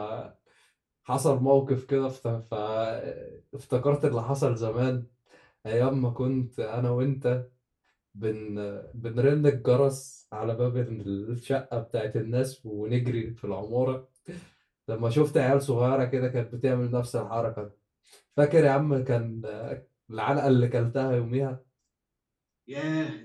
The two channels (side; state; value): both; identical; correlation 1.00